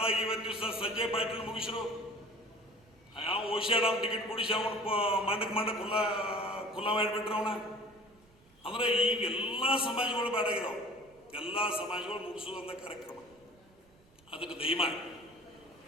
ಇವತ್ತು ದಿವಸ ಸಂಜಯ್ ಪಾಟೀಲ್ ಮುಗಿಸಿರು. ಯಾವ ಓಶಿಯಾಡಮ್ ಟಿಕೆಟ್ ಕೊಡಿಸಿ ಅವನು ಮಂಡಕ್ ಖುಲ್ಲಾ ಮಾಡಿಬಿಟ್ರೆ ಅವನ. ಅಂದ್ರೆ ಈಗ ಎಲ್ಲ ಸಮಾಜಗಳು ಬೇಡಾಗಿದಾವೆ. ಎಲ್ಲ ಸಮಾಜಗಳು ಮುಗಿಸುವಂಥ ಕಾರ್ಯಕ್ರಮ ಅದಕ್ಕೆ ದಯಮಾಡಿ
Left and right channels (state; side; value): noise; right; rumble, 30 dB below the sound